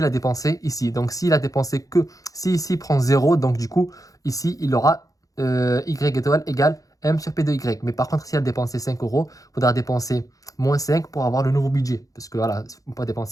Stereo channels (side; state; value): right; late; 0.17 ms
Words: a dépensé ici. Donc s'il a dépensé que... Si ici il prend 0, donc du coup, ici, il aura... Y étoile égale M sur P de Y. Mais par contre, si elle a dépensé 5 €, il faudra dépenser moins 5 pour avoir le nouveau budget. Parce que voilà, on peut pas